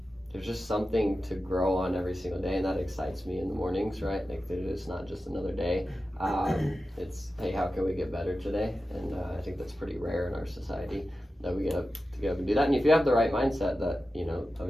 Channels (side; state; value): both; normal; correlation 0.93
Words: there's just something to grow on every single day, and that excites me in the mornings, right? Like it's not just another day. It's, hey, how can we get better today? And I think that's pretty rare in our society that we get up and do that. And if you have the right mindset, that, you know,